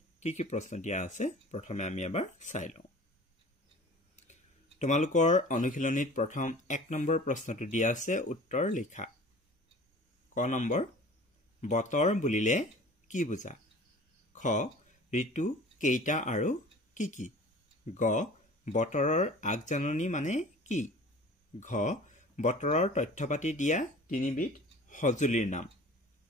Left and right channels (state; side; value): normal; both; correlation 0.44